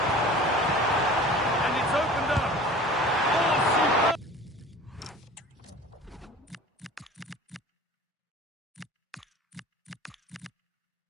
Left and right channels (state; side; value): normal; both; correlation 0.42